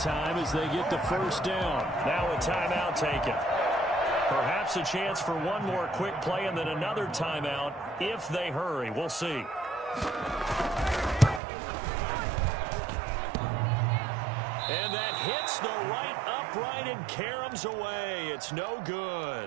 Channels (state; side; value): drops out; left; at 11.4 s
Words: time as they get the 1st down. Now a timeout taken. Perhaps perhaps a chance for one more quick play and then another timeout if they hurry. We'll see. And that hits the right upright and caroms away. It's no